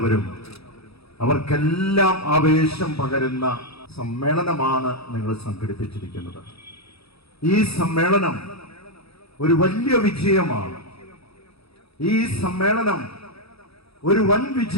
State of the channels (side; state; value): right; late; 0.77 ms